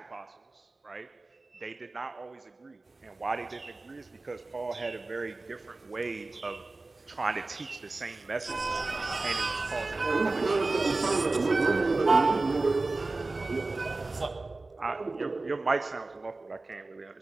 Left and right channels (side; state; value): left; quieter; 3.3 dB